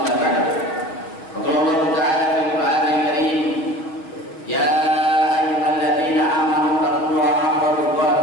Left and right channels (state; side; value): late; right; 6.1 ms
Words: ba'dahu. Qala Allah ta'ala fil Qur'anil Karim, ya ayyuhalladzina amanu taqullaha haqqa